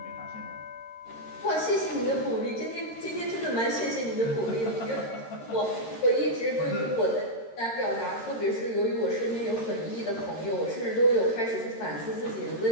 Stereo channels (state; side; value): late; right; 13 ms